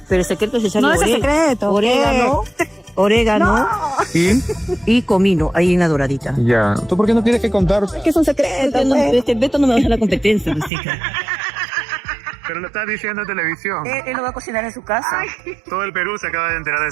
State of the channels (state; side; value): drops out; left; at 10.7 s